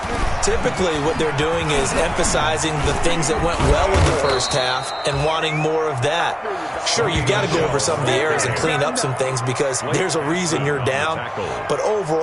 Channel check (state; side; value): identical; both; correlation 1.00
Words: Typically, what they're doing is emphasizing the things that went well in the first half and wanting more of that. Sure, you've got to go over some of the errors and clean up some things because there's a reason you're down. But